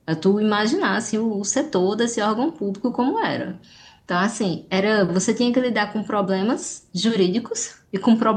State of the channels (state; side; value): identical; both; correlation 1.00